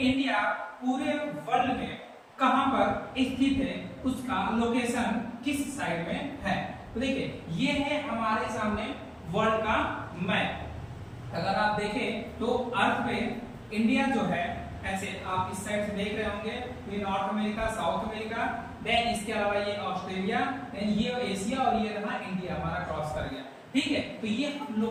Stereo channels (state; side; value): identical; both; correlation 1.00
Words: पूरे वर्ल्ड में कहां पर स्थित है, उसका लोकेशन किस साइड में है। तो देखिए ये है हमारे सामने वर्ल्ड का मैप। अगर आप देखें तो अर्थ पे इंडिया जो है, ऐसे आप इस साइड से देख रहे होंगे, ये North America, South America, then इसके अलावा ये ऑस्ट्रेलिया, देन ये एशिया और ये रहा इंडिया हमारा क्रॉस कर गया। ठीक है, तो ये हम